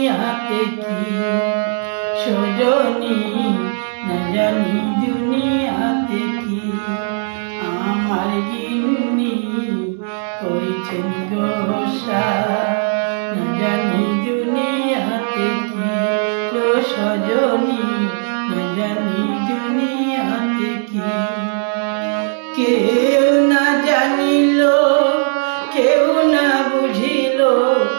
কি সজনী, না জানি দুনিয়াতে কি। আমার গিন্নি করেছেন গোসা, না জানি দুনিয়াতে কি সজনী, না জানি দুনিয়াতে কি। কেউ না জানিল, কেউ না বুঝিল,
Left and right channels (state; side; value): silent; left; 56 dB below the other